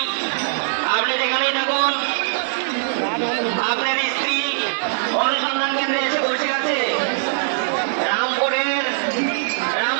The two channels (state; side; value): silent; left; digital silence